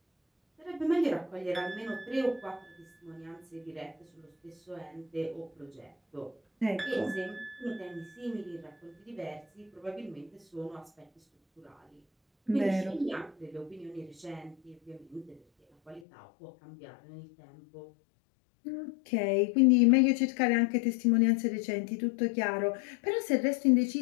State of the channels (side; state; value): right; drops out; at 16.0 s